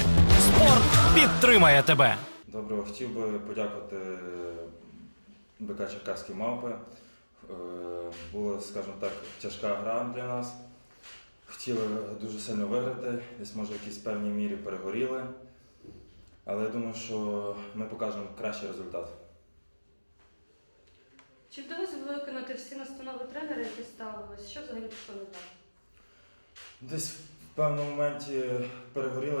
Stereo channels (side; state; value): both; inverted; correlation -1.00